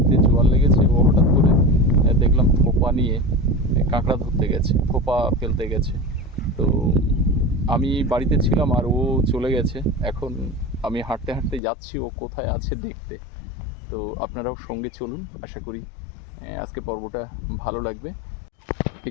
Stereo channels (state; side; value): drops out; right; at 11.6 s